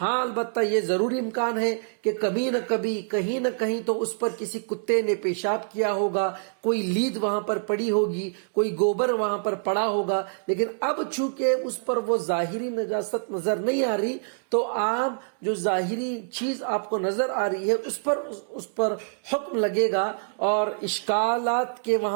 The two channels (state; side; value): silent; left; digital silence